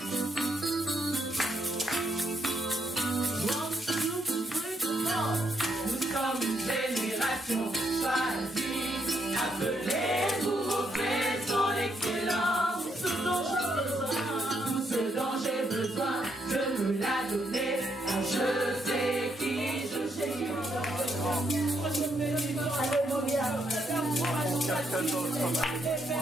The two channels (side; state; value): both; normal; correlation 0.76